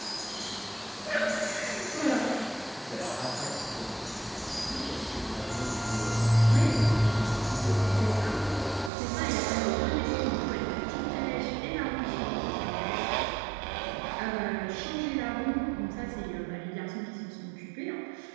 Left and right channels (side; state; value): left; drops out; at 8.9 s